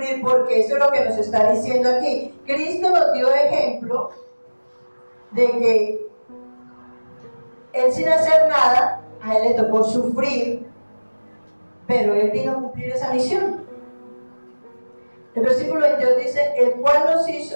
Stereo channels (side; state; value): both; inverted; correlation -1.00